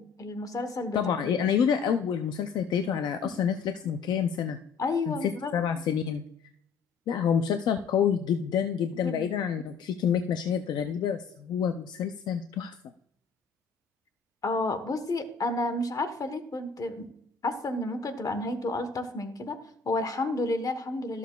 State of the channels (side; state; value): right; quieter; 5.5 dB